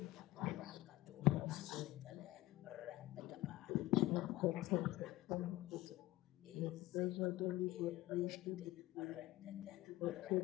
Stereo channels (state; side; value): quieter; right; 17.6 dB